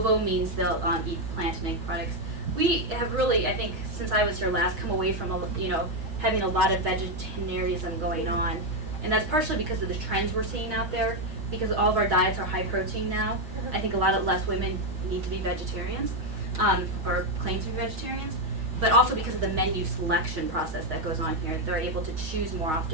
means they'll eat plant and egg products. We have really, I think, since I was here last, come away from having a lot of vegetarianism going on, and that's partially because of the trends we're seeing out there. Because all of our diets are high protein now, I think a lot of less women need to be vegetarians, or claim to be vegetarians. But also because of the menu selection process that goes on here, they're able to choose more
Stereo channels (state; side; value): late; left; 6.4 ms